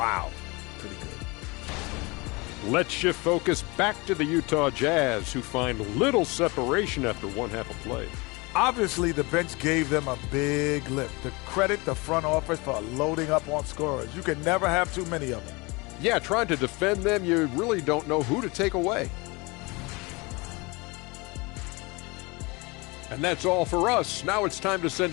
Pretty good. Let's shift focus back to the Utah Jazz, who find little separation after one half of play. Obviously, the bench gave them a big lift. To credit the front office for loading up on scorers. You can never have too many of them. Yeah, trying to defend them, you really don't know who to take away. And that's all for us. Now it's time to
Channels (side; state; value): right; quieter; 26.3 dB